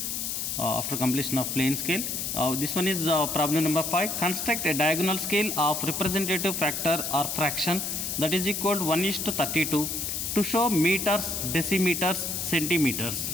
After completion of plane scale. This one is problem number 5. Construct a diagonal scale of representative factor or fraction that is equal to 1:32 to show meters, decimeters, centimeters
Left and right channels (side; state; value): left; noise; hiss, 2 dB below the sound